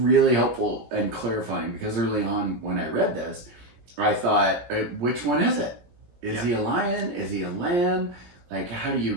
helpful and clarifying because early on when I read this, I thought, which one is it? Is he a lion? Is he a lamb? Like, how do you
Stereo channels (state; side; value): late; left; 17 ms